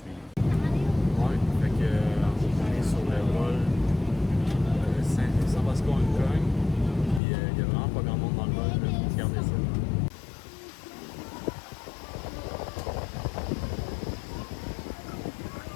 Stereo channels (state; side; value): drops out; right; at 7.2 s